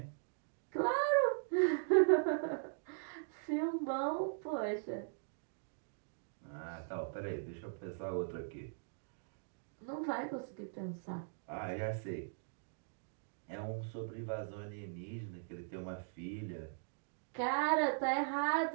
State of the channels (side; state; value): left; silent; digital silence